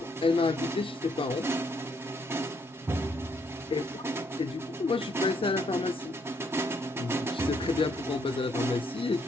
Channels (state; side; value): normal; both; correlation 0.71